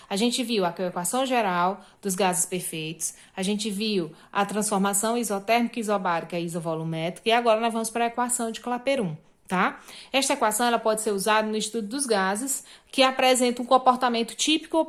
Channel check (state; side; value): identical; both; correlation 1.00